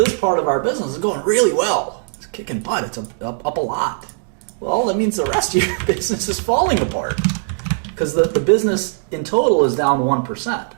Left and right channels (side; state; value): left; silent; digital silence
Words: part of our business, it's going really well. It's kicking butt. It's up a lot. Well, that means the rest of your business is falling apart because the business in total is down 1%.